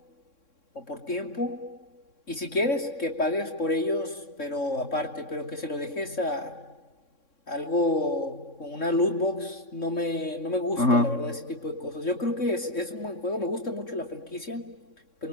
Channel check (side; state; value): right; late; 3.6 ms